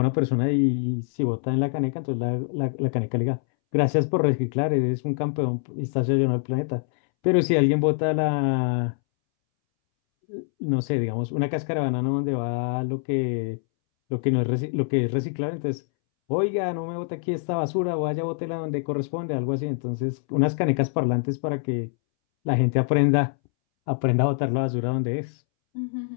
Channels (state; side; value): silent; right; 62 dB below the other